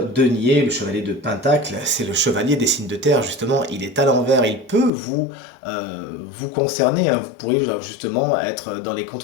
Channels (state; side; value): drops out; right; at 4.9 s